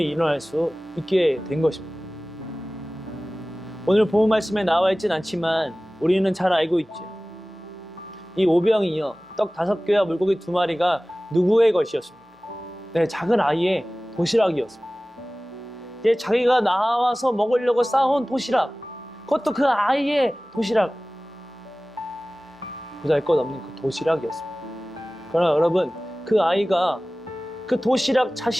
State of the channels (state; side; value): normal; both; correlation 0.97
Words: 일어날 수 있게 된 것입니다. 오늘 본문 말씀에 나와 있진 않지만 우리는 잘 알고 있죠. 이 오병이어 떡 5개와 물고기 2마리가 누구의 것이었습니까? 네, 작은 아이의 도시락이었습니다. 이제 자기가 나와서 먹으려고 싸온 도시락, 그것도 그 아이의 도시락, 보잘것없는 그 도시락이었습니다. 그러나 여러분, 그 아이가 그 도시락,